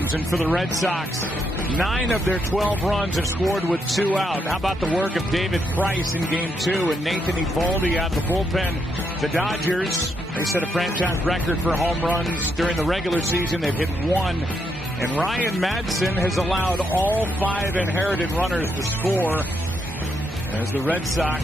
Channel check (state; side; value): normal; both; correlation 0.78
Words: And for the Red Sox, 9 of their 12 runs have scored with 2 out. How about the work of David Price in Game 2 and Nathan Eovaldi out of the bullpen? The Dodgers, they set a franchise record for home runs during the regular season. They've hit 1. And Ryan Madson has allowed all 5 inherited runners to score as the Red